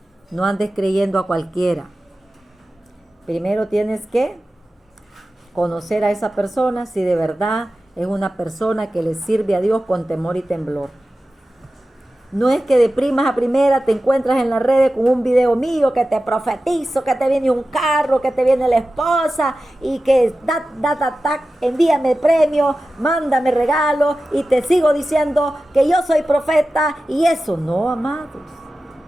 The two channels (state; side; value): normal; both; correlation 0.94